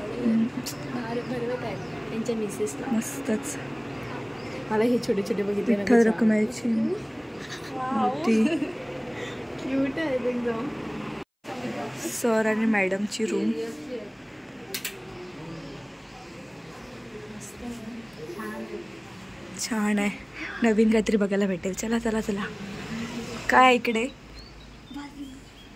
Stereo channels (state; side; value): identical; both; correlation 1.00